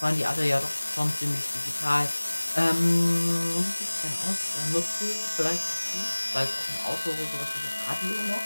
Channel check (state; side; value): inverted; both; correlation -1.00